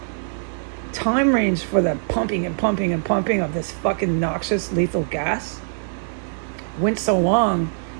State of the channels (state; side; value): silent; left; digital silence